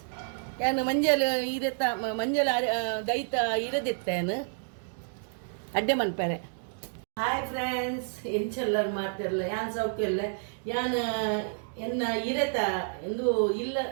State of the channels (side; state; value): left; silent; digital silence